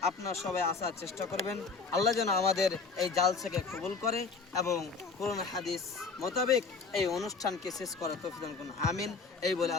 আপনারা সবাই আসার চেষ্টা করবেন। আল্লাহ যেন আমাদের এই জালসাকে কবুল করে এবং কোরআন হাদিস মোতাবেক এই অনুষ্ঠানকে শেষ করার তৌফিক দান করুন, আমিন। এই বলে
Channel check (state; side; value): quieter; right; 4.6 dB